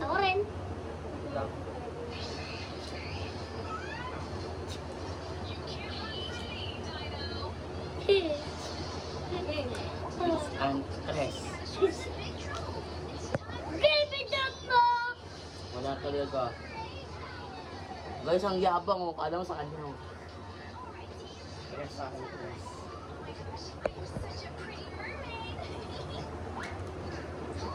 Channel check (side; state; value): both; identical; correlation 1.00